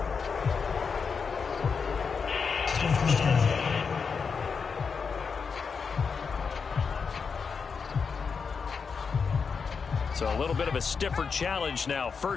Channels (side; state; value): right; quieter; 5.6 dB